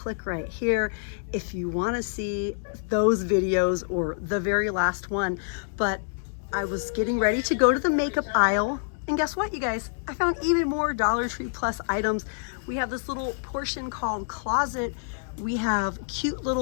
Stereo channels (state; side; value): silent; right; digital silence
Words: right here if you want to see those videos or the very last one. But I was getting ready to go to the makeup aisle, and guess what, you guys? I found even more Dollar Tree Plus items. We have this little portion called closet. We have cute